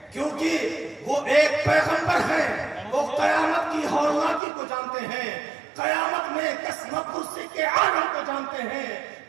کیونکہ وہ ایک پیغمبر ہیں, وہ قیامت کی ہولناکی کو جانتے ہیں, قیامت میں قسمت کرسی کے عالم کو جانتے ہیں,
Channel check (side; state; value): left; drops out; at 4.4 s